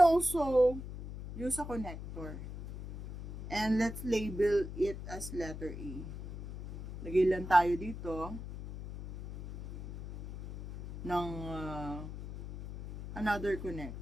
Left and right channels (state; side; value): noise; left; hum, 9 dB below the sound